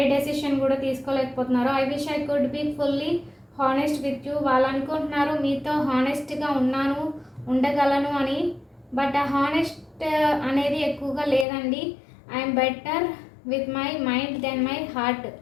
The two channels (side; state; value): right; drops out; at 11.5 s